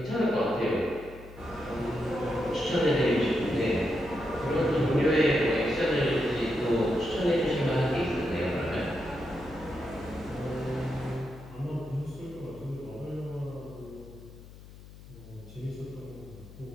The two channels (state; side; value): noise; left; hum, 18 dB below the sound